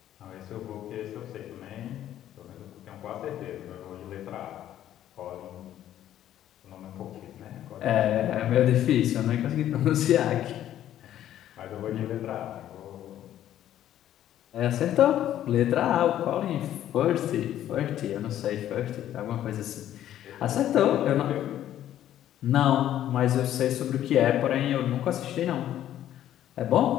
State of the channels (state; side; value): quieter; right; 11.9 dB